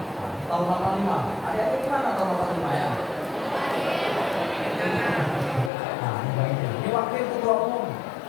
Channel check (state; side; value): drops out; right; at 5.7 s